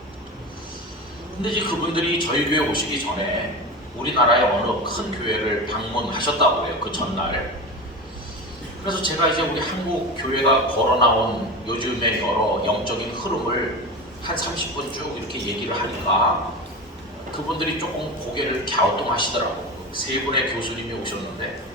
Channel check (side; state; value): both; normal; correlation 0.26